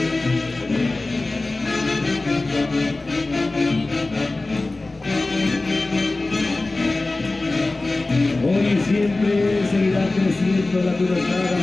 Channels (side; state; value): right; quieter; 3.1 dB